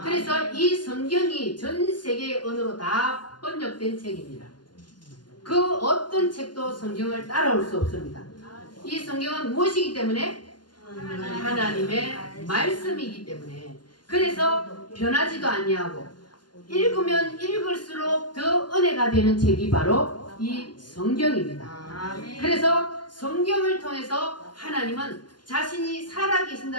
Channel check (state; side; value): late; right; 0.71 ms